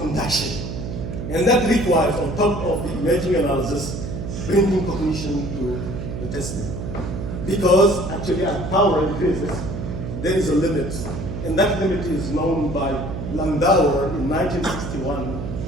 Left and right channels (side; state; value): right; noise; hum, 6 dB below the sound